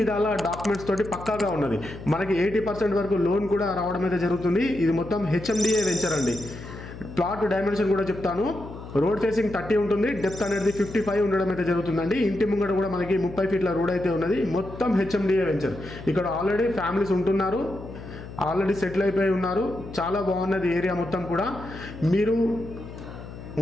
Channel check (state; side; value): noise; left; hum, 13 dB below the sound